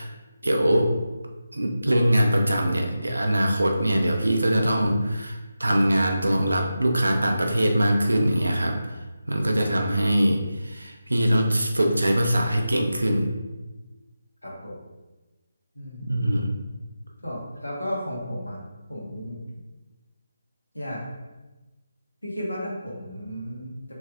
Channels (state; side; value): inverted; both; correlation -0.92